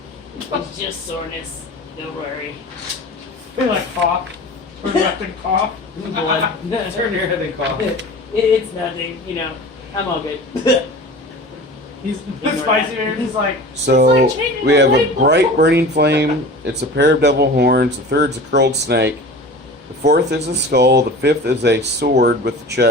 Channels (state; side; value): normal; both; correlation 0.37